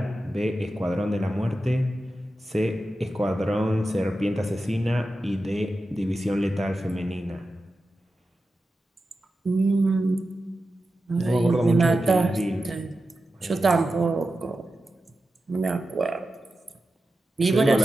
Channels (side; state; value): both; normal; correlation 0.92